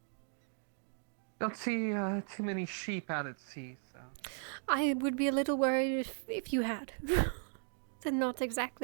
Don't see too many sheep out at sea, so. I would be a little worried if you had. They're not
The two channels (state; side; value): silent; left; 53 dB below the other